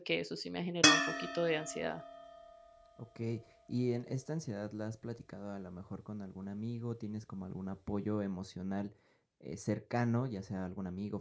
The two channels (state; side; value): identical; both; correlation 1.00